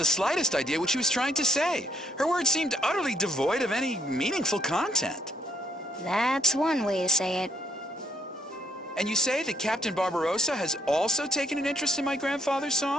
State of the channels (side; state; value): both; normal; correlation 0.71